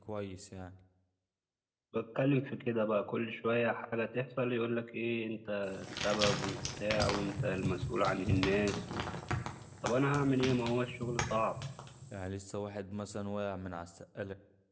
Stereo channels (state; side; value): identical; both; correlation 1.00